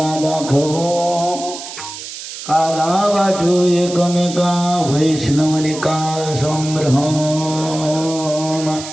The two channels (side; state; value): right; noise; hiss, 11 dB below the sound